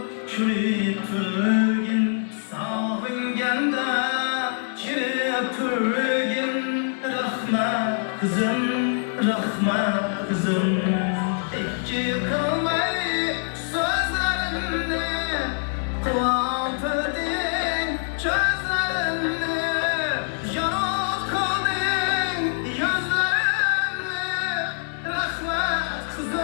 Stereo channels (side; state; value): right; silent; 62 dB below the other